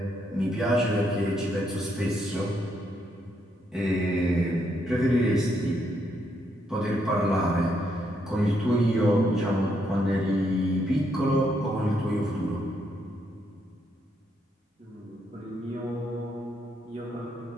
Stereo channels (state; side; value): normal; both; correlation 0.76